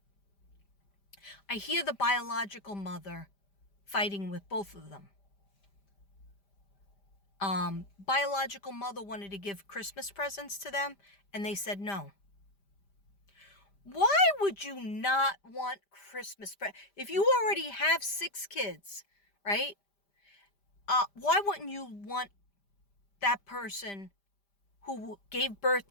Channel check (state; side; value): late; right; 5.0 ms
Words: I hear the biological mother fighting with both of them. Biological mother wanted to give Christmas presents to them, and they said no. Why would you not want Christmas presents? If you already have 6 kids, right? Why wouldn't you want that person who gave birth